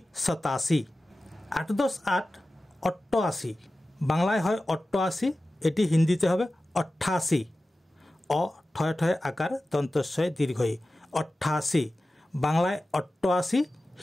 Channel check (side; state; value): both; normal; correlation 0.95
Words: 87 8 10 8 88 বাংলায় হয় 88 এটি হিন্দিতে হবে 88 অ ঠয় ঠয় আকার দন্তস্বয় দীর্ঘই 88 বাংলায় 88